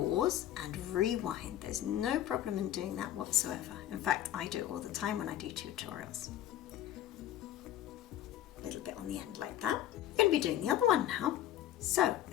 and rewind. There's no problem in doing that whatsoever. In fact, I do it all the time when I do tutorials. A little bit on the end like that. We're going to be doing the other one now. So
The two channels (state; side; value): quieter; right; 12.2 dB